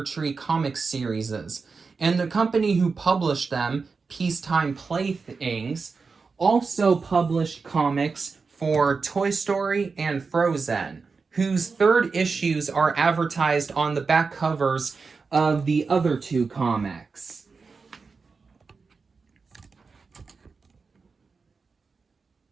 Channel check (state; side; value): quieter; left; 4.7 dB